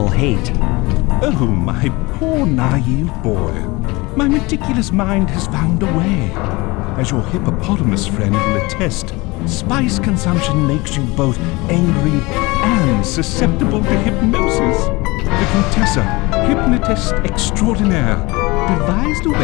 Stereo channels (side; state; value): right; quieter; 23.6 dB